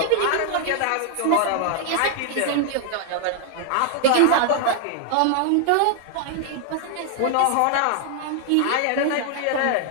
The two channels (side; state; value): both; different; correlation 0.00